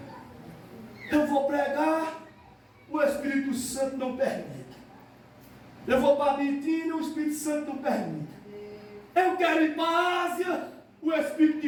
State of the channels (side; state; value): both; identical; correlation 1.00